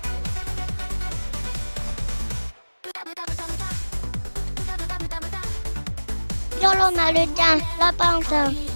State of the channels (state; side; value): inverted; both; correlation -1.00